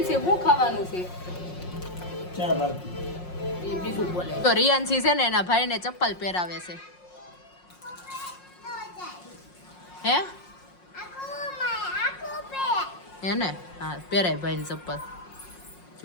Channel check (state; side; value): late; right; 5.6 ms